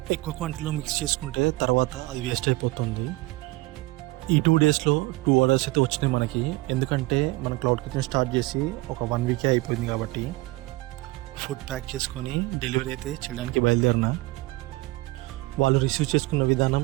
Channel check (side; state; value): left; quieter; 21.1 dB